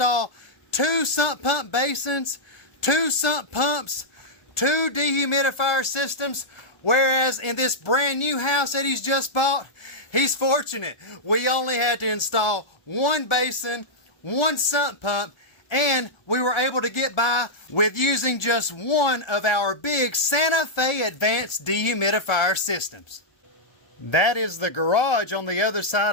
2 sump pump basins, 2 sump pumps, 2 dehumidifier systems, whereas in this brand new house that he's just bought, he's fortunate. We only had to install 1 basin, 1 sump pump, and we were able to get by with using just one of our big Santa Fe advanced dehumidifier systems. That is the garage on the other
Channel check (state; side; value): late; right; 1.6 ms